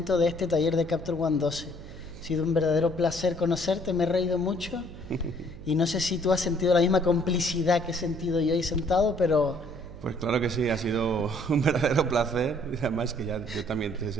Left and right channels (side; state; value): right; noise; hum, 15 dB below the sound